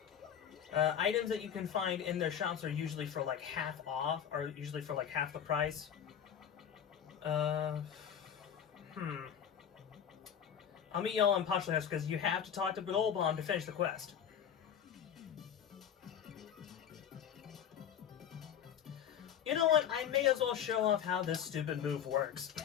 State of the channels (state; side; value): quieter; right; 8.7 dB